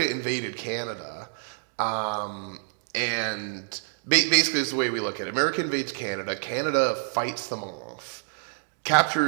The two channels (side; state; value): left; silent; digital silence